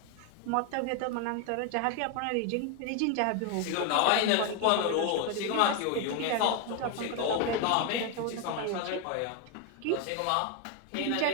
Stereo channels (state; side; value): different; both; correlation 0.01